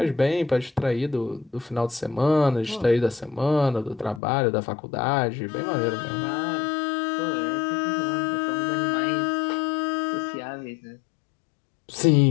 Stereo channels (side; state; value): right; drops out; at 4.2 s